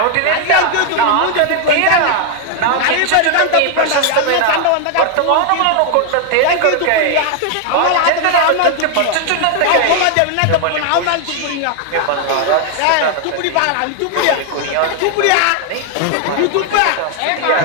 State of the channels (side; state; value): both; different; correlation 0.00